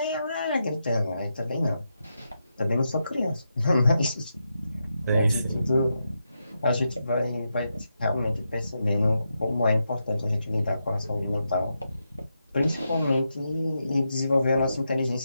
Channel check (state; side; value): inverted; both; correlation -0.85